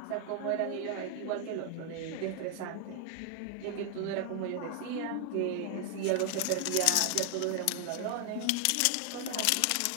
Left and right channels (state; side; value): different; both; correlation 0.00